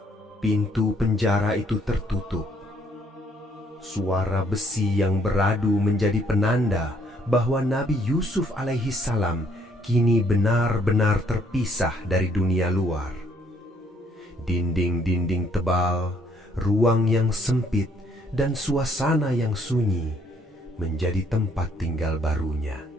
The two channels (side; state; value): both; normal; correlation 0.66